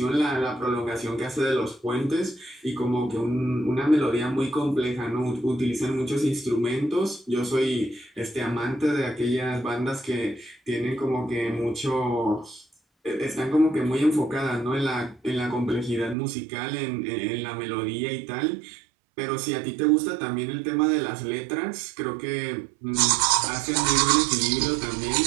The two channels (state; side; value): drops out; left; at 16.2 s